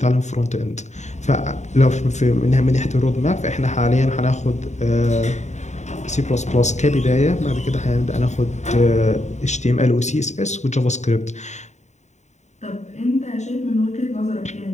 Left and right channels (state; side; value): late; right; 0.34 ms